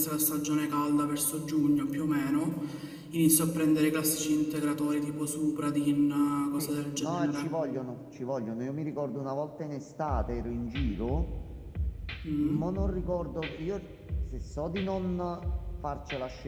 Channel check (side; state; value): both; identical; correlation 1.00